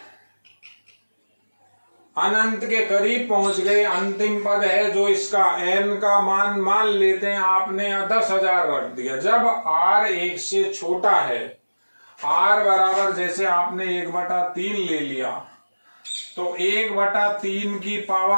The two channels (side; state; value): both; inverted; correlation -1.00